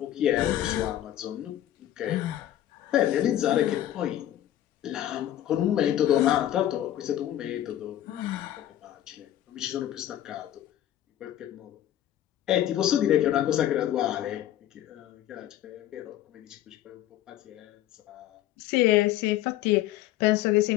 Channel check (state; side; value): quieter; right; 12.6 dB